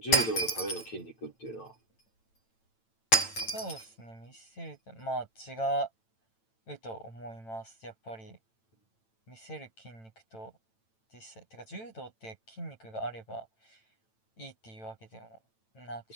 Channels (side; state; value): right; late; 9.0 ms